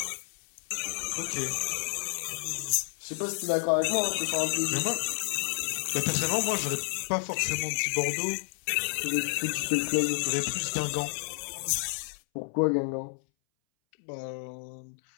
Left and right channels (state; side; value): silent; right; 58 dB below the other